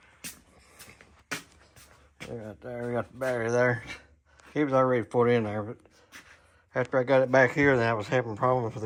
Right there, we got the battery there. It was already put in there, but after I got it back here, then I was having problems with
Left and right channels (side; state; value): both; identical; correlation 1.00